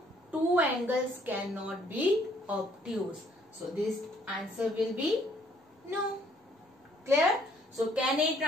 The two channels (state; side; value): normal; both; correlation 0.63